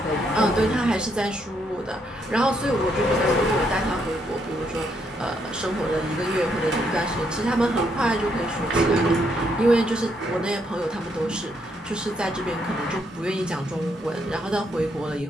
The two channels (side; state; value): both; normal; correlation 0.75